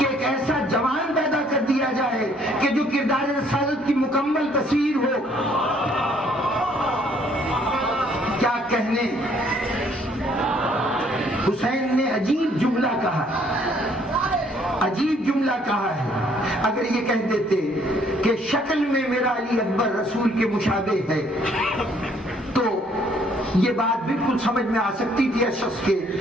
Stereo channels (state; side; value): normal; both; correlation 0.63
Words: ایک ایسا جوان پیدا کر دیا جائے کہ جو کردار رسالت کی مکمل تصویر ہو۔ کیا کہنے، حسین نے عجیب جملہ کہا، عجیب جملہ کہا ہے۔ اگر یہ کہہ دیتے کہ شکل میں میرا علی اکبر رسول کے مشابہ ہے تو یہ بات بالکل سمجھ میں آ سکتی تھی اس شخص کے،